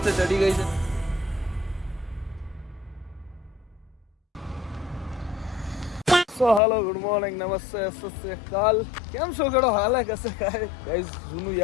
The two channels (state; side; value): drops out; right; at 6.6 s